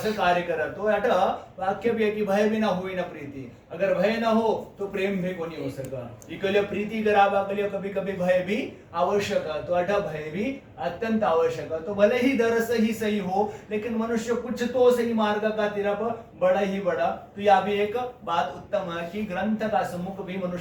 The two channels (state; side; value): identical; both; correlation 1.00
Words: कार्य करा। तो अटा वाक्य भी है कि भय भी ना हुई ना प्रीति, अगर भय ना हो तो प्रेम भी को नहीं हो सका। इकले प्रीति करावा के लिए कभी कभी भय भी आवश्यक है, तो अटा भय भी अत्यंत आवश्यक है। तो भले ही दर से ही सही हो, लेकिन मनुष्य कुछ तो सही मार्ग का तरफ बड़ा ही बड़ा। तो यह भी एक बात उत्तम है कि ग्रंथ का सम्मुख भी